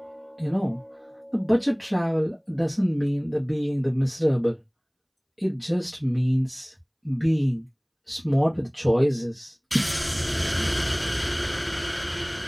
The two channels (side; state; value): both; identical; correlation 1.00